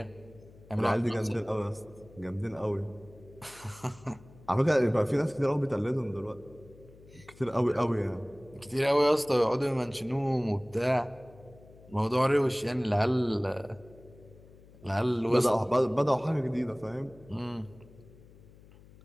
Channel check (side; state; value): left; noise; hum, 23 dB below the sound